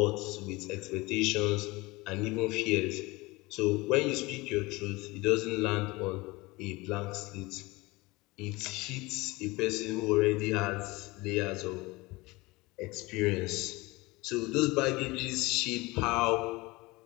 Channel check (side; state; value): right; quieter; 22.5 dB